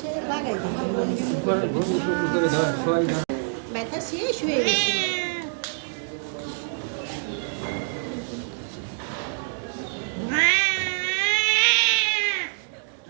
লাগাই ব্যথা শেষ হয়ে গেছে।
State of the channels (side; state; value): left; silent; digital silence